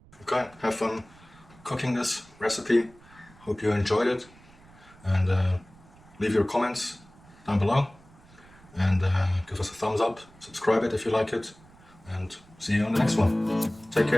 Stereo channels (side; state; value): right; noise; rumble, 25 dB below the sound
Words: Okay, have fun cooking this recipe. Hope you enjoyed it, and leave your comments down below, and give us a thumbs up, subscribe it if you like it, and see you on the next one. Take